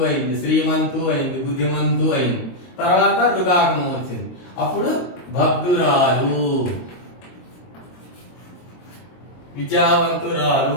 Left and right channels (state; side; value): late; right; 22 ms